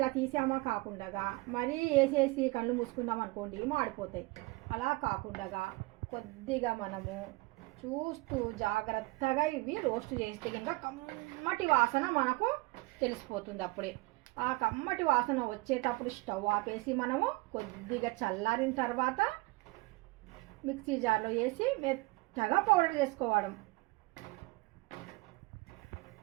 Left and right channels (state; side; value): quieter; left; 23.7 dB